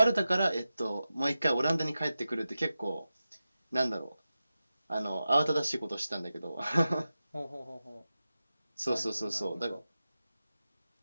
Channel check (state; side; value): inverted; both; correlation -0.93